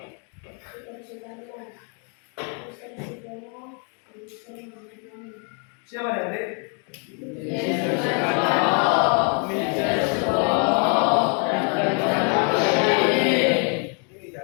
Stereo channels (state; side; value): quieter; right; 39.5 dB